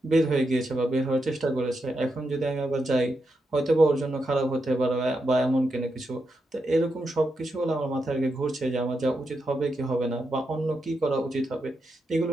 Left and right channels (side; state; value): both; normal; correlation 0.85